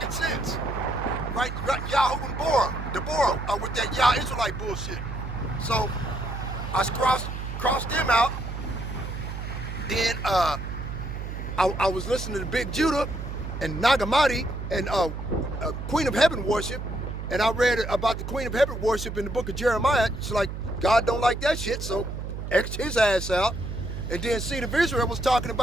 sense. Right? Yahoo and Deborah with that Yah Israelite bullshit. So I crossed them out. Then I was listening to Big Judah and Nagamati and Queen of Heaven worship, and I read about the Queen of Heaven worship in the book of Jeremiah. It's like, God don't like that shit, so X his ass out. And then Seed of Israel was talking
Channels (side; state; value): right; noise; hum, 6 dB below the sound